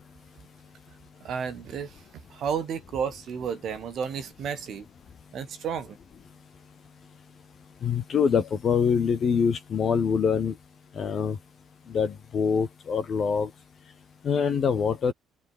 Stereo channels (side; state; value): right; quieter; 4.4 dB